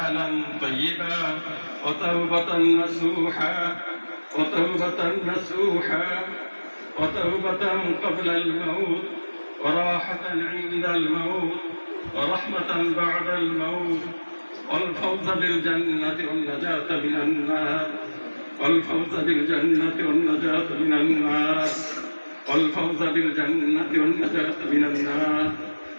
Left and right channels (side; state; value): both; inverted; correlation -1.00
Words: طيبا وتوبة نصوحا وتوبة قبل الموت وراحة عند الموت ورحمة بعد الموت والفوز بالجنة والنجاة من النار والفوز بالجنة والنجاة من النار والفوز بالجنة والنجاة من النار